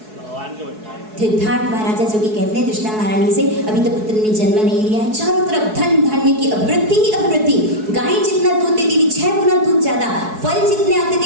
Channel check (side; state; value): left; late; 4.7 ms